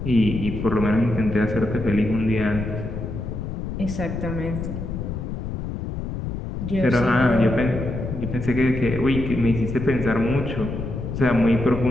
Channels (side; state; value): left; noise; rumble, 5 dB below the sound